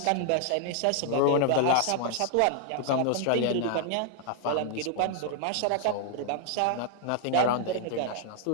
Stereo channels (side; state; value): both; different; correlation 0.00